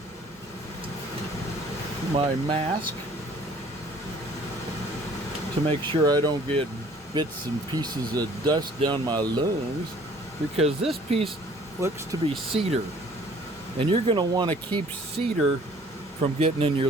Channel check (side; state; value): both; normal; correlation 0.55